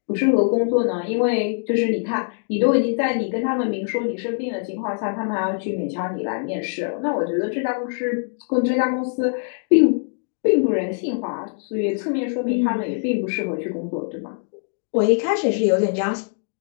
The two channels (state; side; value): silent; right; digital silence